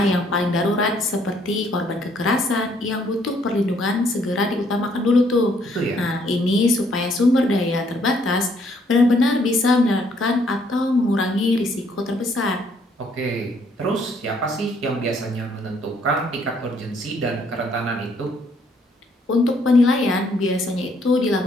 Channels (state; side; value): normal; both; correlation 0.67